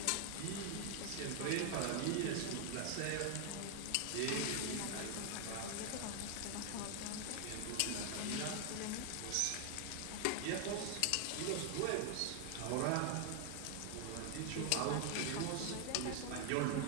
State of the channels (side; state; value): both; different; correlation 0.00